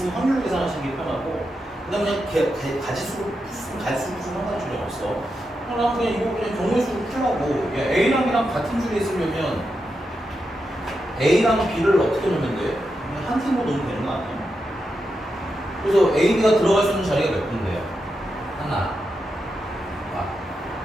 확률로 계산하시는 게 편하고, 그다음에 그냥 가지수로 상관이 전혀 없어. 그냥 이거 그냥 경우의 수로 풀라고. A랑 B랑 같은 줄에 있으려면 A랑 B를 어떻게 놓으면 돼? 그냥 한 팀으로 놓으면 되는 거 아니에요? 그래서 A, B가 들어갈 수 있는 자리가 몇 군데요? 하나,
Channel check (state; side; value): normal; both; correlation 0.87